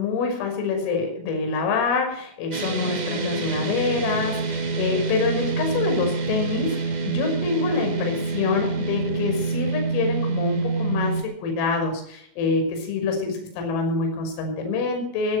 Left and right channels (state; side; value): late; right; 2.0 ms